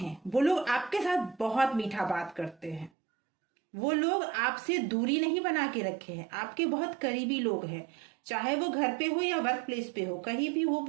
वो लोग आपके साथ बहुत मीठा बात करते हैं, वो लोग आपसे दूरी नहीं बना के रखे हैं, आपके बहुत करीबी लोग हैं, चाहे वो घर पे हो या वर्क प्लेस पे हो, कहीं भी हो,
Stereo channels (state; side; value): drops out; left; at 2.9 s